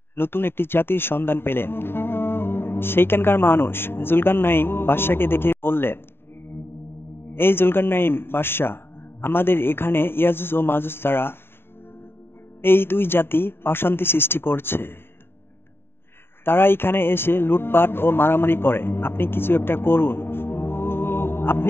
নতুন একটি জাতির সন্ধান পেলেন। সেইখানকার মানুষ জুলকারনাইন বাদশাকে দেখে বললেন, এই জুলকারনাইন বাদশাহ, আমাদের এখানে ইয়াজুজ ও মাজুজ তারা এই দুই জাতি অশান্তি সৃষ্টি করছে। তারা এখানে এসে লুটপাট ও মারামারি করে। আপনি কিছু একটা করুন।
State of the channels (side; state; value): right; late; 0.11 ms